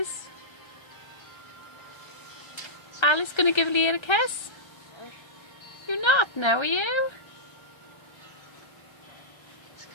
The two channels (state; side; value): late; right; 1.3 ms